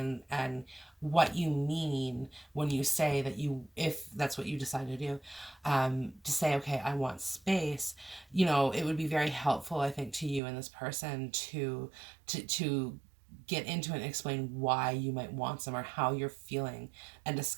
and what you mean when you say that you, if that's what you decide to do, to say, okay, I want space. It would be very helpful, I think, to you and this person to get into it and explain why you might want some or how you're feeling and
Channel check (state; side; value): drops out; left; at 10.4 s